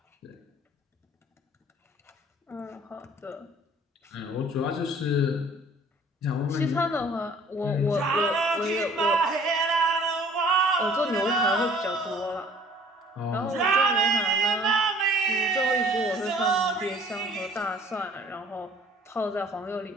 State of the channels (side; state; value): both; normal; correlation 0.52